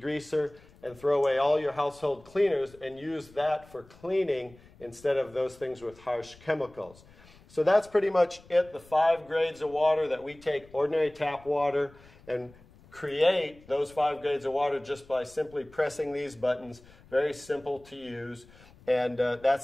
and throw away all your household cleaners and use that for cleaning instead of those things with harsh chemicals. So that's pretty much it, the 5 grades of water that we take ordinary tap water and create those 5 grades of water just by simply pressing these buttons. Very simple to use, and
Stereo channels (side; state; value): left; noise; rumble, 25 dB below the sound